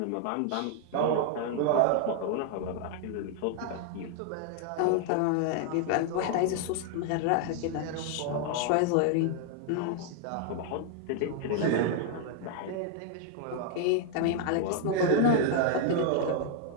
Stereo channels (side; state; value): both; different; correlation 0.00